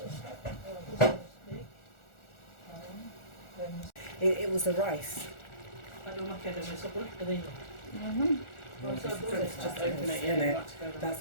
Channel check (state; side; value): late; right; 1.4 ms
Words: It was the rice. Just open it, yeah.